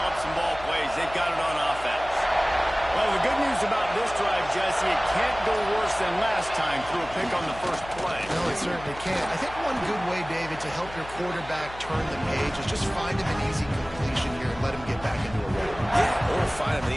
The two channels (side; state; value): left; noise; hum, 16 dB below the sound